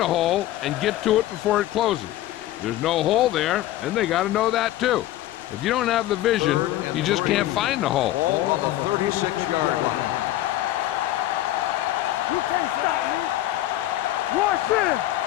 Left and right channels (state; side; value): quieter; right; 14.6 dB